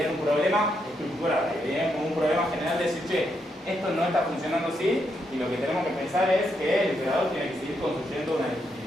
un problema estructural, veían como un problema general de decir, che, esto no está funcionando así y lo que tenemos que pensar es que el emperador tiene que seguir construyendo una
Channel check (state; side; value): normal; both; correlation 0.79